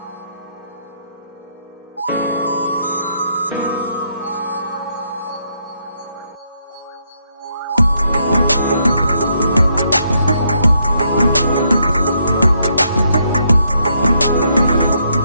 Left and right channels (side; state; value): both; inverted; correlation -0.75